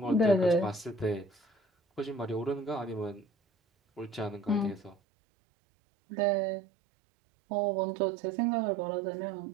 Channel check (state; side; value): drops out; left; at 5.0 s